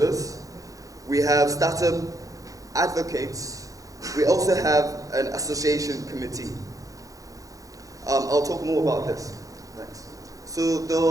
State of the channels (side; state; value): left; late; 0.17 ms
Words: We have startup advocates. We also have an association committee. I'll talk more about this next. So